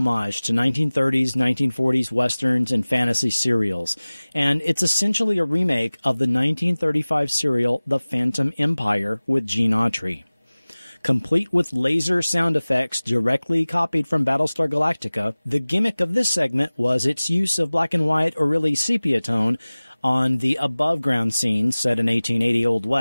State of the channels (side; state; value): both; inverted; correlation -0.99